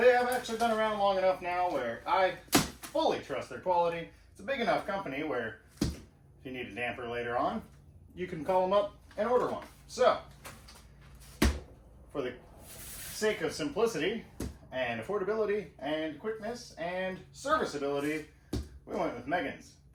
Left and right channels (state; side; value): identical; both; correlation 1.00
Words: have actually been around long enough now where I fully trust their quality. It's a big enough company where if you need a damper later on, you can call them up and order one. So, for the sake of simplicity and affordability and quickness and serviceability, we went with Megan's.